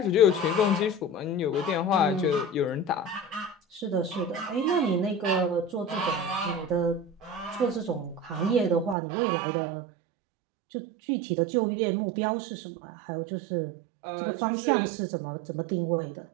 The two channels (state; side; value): drops out; left; at 9.0 s